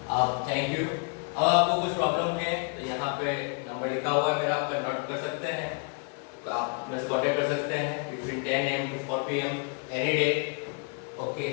आप थैंक यू। अब आपको कुछ प्रॉब्लम है तो यहाँ पे नंबर लिखा हुआ है, अगर आप नोट कर सकते हैं तो आप मेरे से कांटेक्ट कर सकते हैं between 10 AM to 4 PM any day. Okay,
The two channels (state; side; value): quieter; right; 38.4 dB